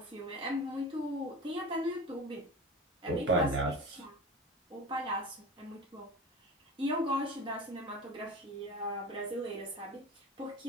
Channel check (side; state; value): both; normal; correlation 0.32